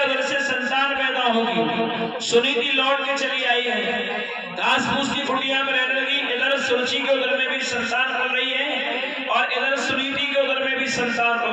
उधर से संतान पैदा होगी। सुनीति लौट के चली आई है, घास फूस की कुटिया में रहने लगी। इधर सुरुचि के उधर में भी संतान पल रही है और इधर सुनीति के उधर में भी संतान पल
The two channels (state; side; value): identical; both; correlation 1.00